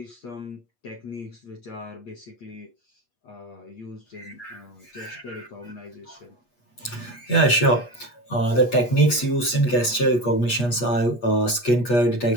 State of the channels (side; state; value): right; late; 8.3 ms